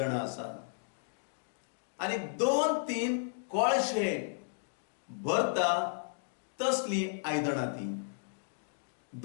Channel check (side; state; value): right; silent; digital silence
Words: आसात. आनी 2-3 कळशे भरता तसली आयदनां ती.